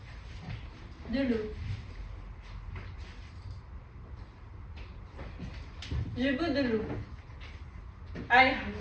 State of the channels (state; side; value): identical; both; correlation 1.00